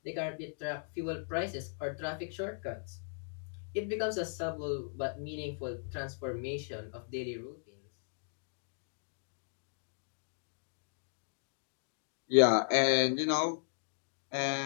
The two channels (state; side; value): silent; right; digital silence